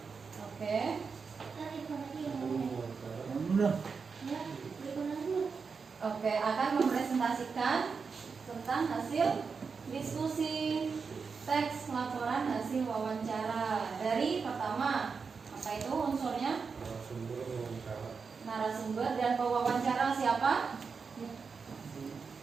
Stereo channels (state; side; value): quieter; left; 5.3 dB